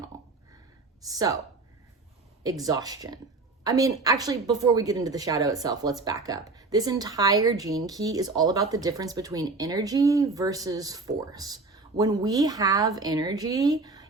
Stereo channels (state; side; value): quieter; left; 3.6 dB